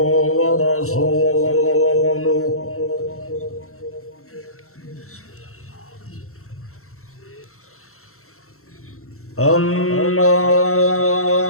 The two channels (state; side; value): late; right; 0.63 ms